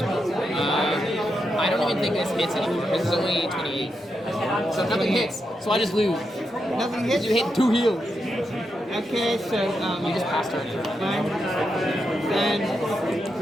I don't even think this hits anymore because it's only 28. So nothing hits, so I just lose. Nothing hits. You hit 2 heals. Okay, so You just passed turn. fine. Then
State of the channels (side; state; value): both; normal; correlation 0.85